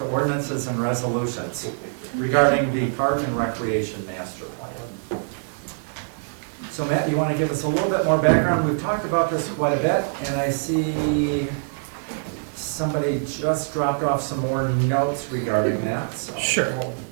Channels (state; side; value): silent; left; digital silence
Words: ordinances and resolutions regarding the Park and Recreation Master Plan. So Matt, you want to give us a little bit more background? We've talked about this quite a bit, and I see somebody just dropped off some more notes regarding that, so. Sure.